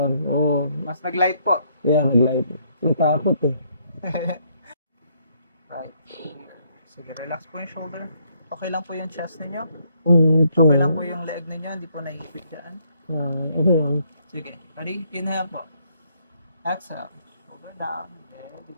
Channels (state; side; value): inverted; both; correlation -0.70